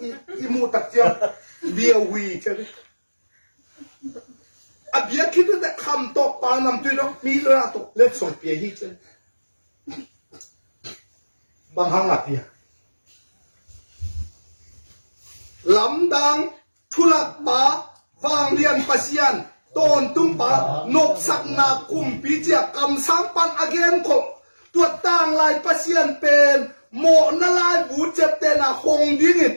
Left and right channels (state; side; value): inverted; both; correlation -1.00